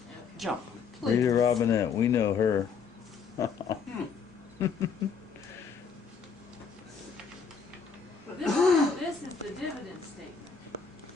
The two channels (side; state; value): right; quieter; 5.8 dB